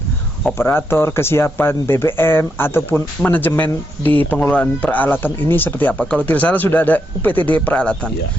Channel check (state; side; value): normal; both; correlation 0.80